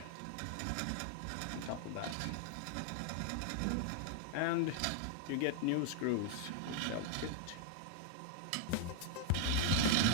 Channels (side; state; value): both; different; correlation 0.00